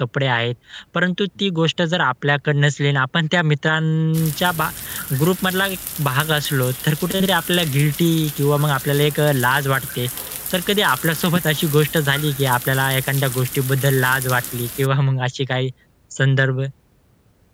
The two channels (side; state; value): both; identical; correlation 1.00